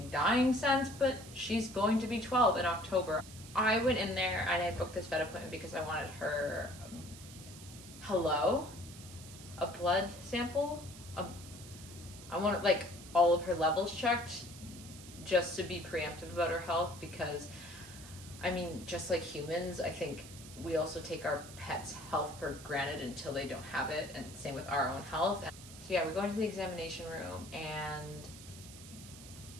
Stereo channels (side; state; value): right; noise; hiss, 16 dB below the sound